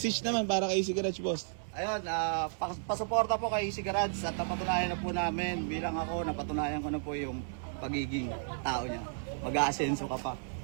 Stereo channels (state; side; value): silent; left; 56 dB below the other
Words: naman para kay Easy Garage, boss. Ayun, pasuporta po kay Easy Garage at napatunayan na po namin, bilang ako, napatunayan ko na po yung pagiging tao niya. Mag-aasenso ka pa.